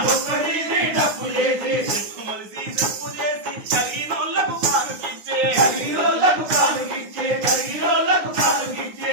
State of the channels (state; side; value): late; left; 9.7 ms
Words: డొక్కదీరి డప్పు చేసి శర్మములిసి చెప్పు చేసి తగినోళ్ళకు కానుకిచ్చే తగినోళ్ళకు కానుకిచ్చే తగినోళ్ళకు కానుకిచ్చే